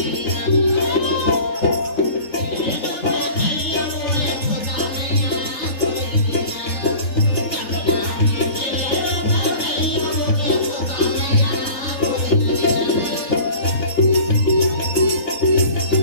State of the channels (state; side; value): late; right; 3.4 ms